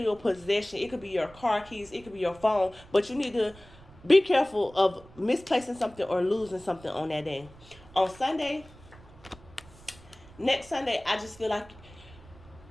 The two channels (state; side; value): noise; right; rumble, 22 dB below the sound